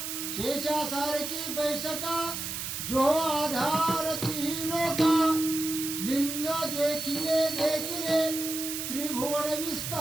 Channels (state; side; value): noise; right; hiss, 5 dB below the sound